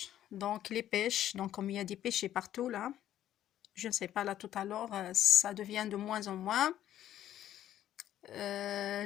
Donc les pêches, donc comme il y a des pêchers partout là, je ne sais pas là tout à l'heure, ça devient de moins en moins.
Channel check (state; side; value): quieter; right; 11.9 dB